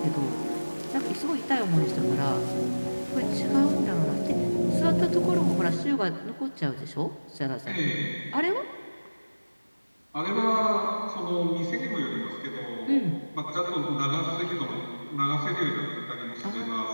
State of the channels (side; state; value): both; inverted; correlation -1.00